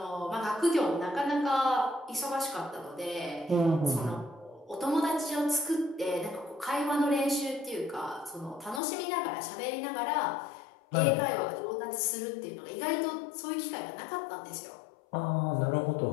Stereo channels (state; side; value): drops out; right; at 8.8 s